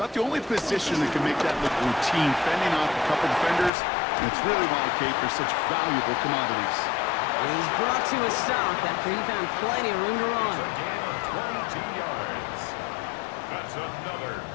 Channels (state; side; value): drops out; right; at 3.7 s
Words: the only position that can make that look routine, fending off a couple defenders, and it's really why, Kate, they're such valuable commodities. And he's brought to a stop after he found plenty of room to run. 22 yards. That's another